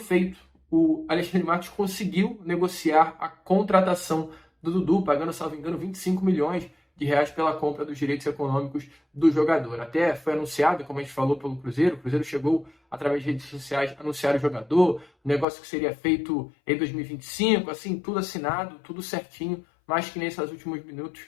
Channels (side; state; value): right; drops out; at 15.5 s